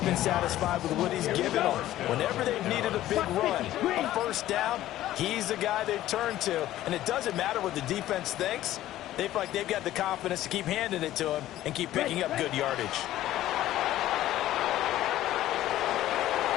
been satisfied with what he's given them. Whenever they've needed a big run, a first down, he's the guy they've turned to. And it doesn't matter what the defense thinks. They feel like they've got the confidence to keep handing it to him and keep picking up good yardage.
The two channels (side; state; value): right; quieter; 14.1 dB